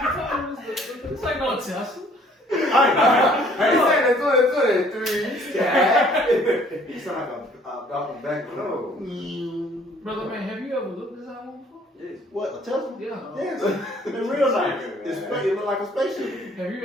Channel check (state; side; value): normal; both; correlation 0.58